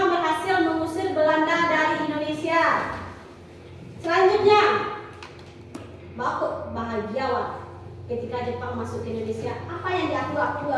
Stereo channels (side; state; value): both; identical; correlation 1.00